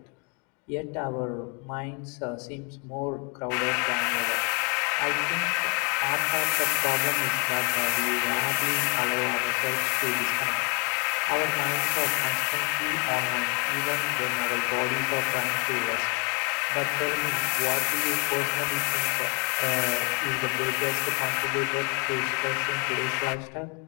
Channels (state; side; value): quieter; right; 34.4 dB